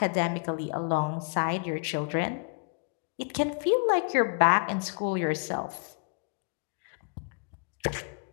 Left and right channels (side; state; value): right; quieter; 38.9 dB